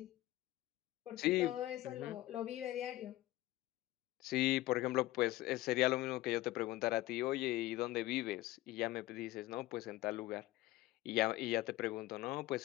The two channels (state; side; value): quieter; right; 17.1 dB